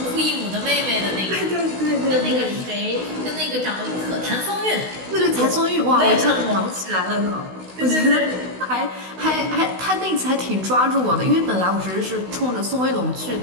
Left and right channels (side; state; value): left; late; 16 ms